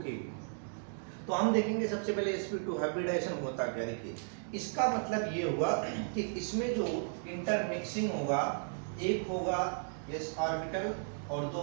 की। तो हम देखेंगे सबसे पहले sp2 हाइब्रिडाइजेशन होता क्या। देखिए, इसका मतलब ये हुआ कि इसमें जो इंटरमिक्सिंग होगा, एक होगा s ऑर्बिटल और दो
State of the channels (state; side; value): silent; left; digital silence